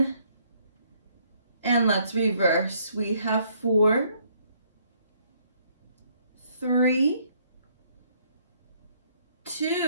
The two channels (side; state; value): both; inverted; correlation -0.66